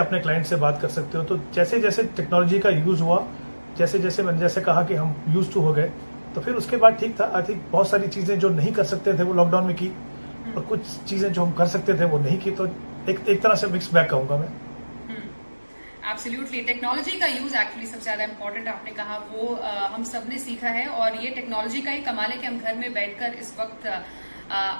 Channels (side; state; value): both; inverted; correlation -1.00